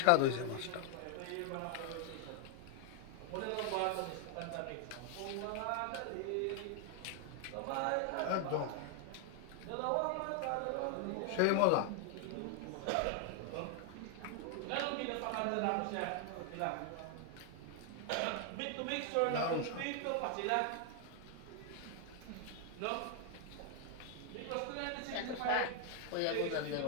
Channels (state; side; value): different; both; correlation 0.00